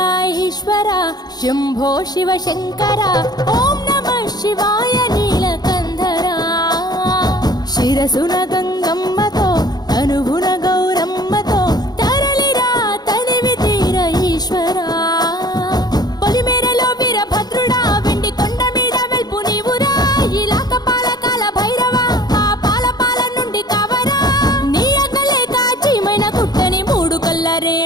ईश्वर शंभो शिव शंकर ओम नमः शिवाय नीलकंधरा शिरसुन गंगम्मतो तनुभुन गौरम्मतो तरलिरा तनिवि तीर ईश्वरा పొలిమేరలో వీరభద్రుడా వెండి కొండ మీద వెల్పు నీవురా ఇలాక పాలకాల భైరవ ఆ పాల నుండి కవరా నీ అగలే కాచిమైన కుట్టని మూడు కల్ల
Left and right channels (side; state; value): right; late; 0.19 ms